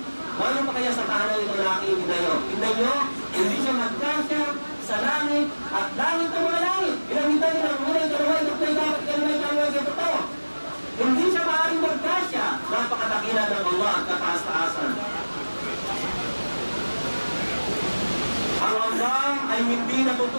Ano pa kaya sa tahanan ito na nakikita nyo? Tignan nyo, hindi siya magkasya sa langit at langit ng mga langit. Pinamitan nyo ng unay, kalaway, katlay, dapat, kalaway, kalaway, ito. Hindi siya maaaring magkasya. Napakadakilan ng Allah at kataas-taasan. Ang Allah ay hindi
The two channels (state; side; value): inverted; both; correlation -1.00